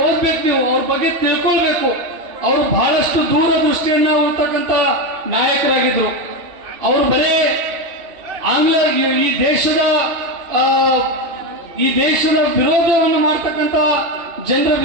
ಓದ್ಬೇಕು, ನೀವು ಅವ್ರ ಬಗ್ಗೆ ತಿಳ್ಕೊಳ್ಬೇಕು. ಅವರು ಬಹಳಷ್ಟು ದೂರದೃಷ್ಟಿಯನ್ನ ಇರ್ತಕ್ಕಂಥ ನಾಯಕರಾಗಿದ್ರು. ಅವರು ಬರೇ ಆಂಗ್ಲ ಈ ದೇಶದ ವಿರೋಧವನ್ನು ಮಾಡ್ತಕ್ಕಂಥ ಜನರ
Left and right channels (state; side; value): late; left; 2.5 ms